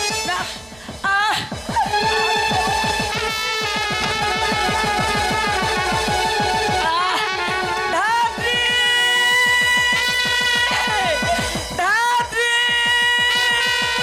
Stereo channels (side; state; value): right; noise; rumble, 28 dB below the sound